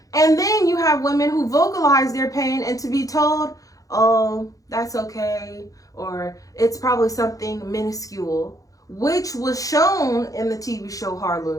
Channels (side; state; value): right; late; 0.17 ms